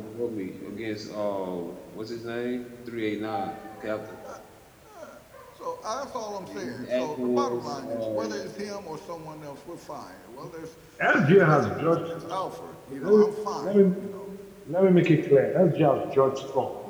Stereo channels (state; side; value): identical; both; correlation 1.00